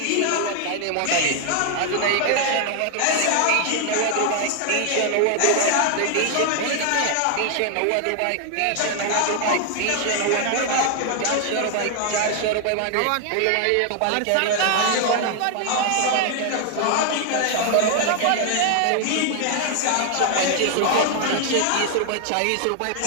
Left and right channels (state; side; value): different; both; correlation 0.00